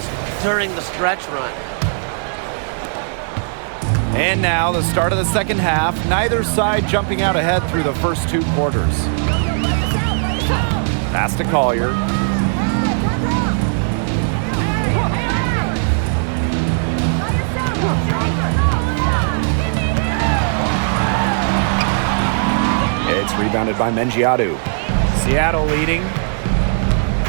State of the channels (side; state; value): left; silent; digital silence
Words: during the stretch run. And now the start of the second half, neither side jumping out ahead through the first 2 quarters. Pass to Collier. It's rebounded by Mengiadu. Seattle leading.